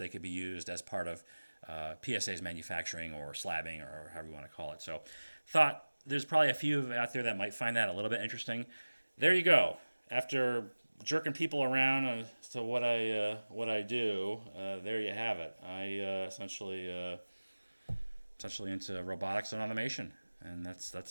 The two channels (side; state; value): both; inverted; correlation -1.00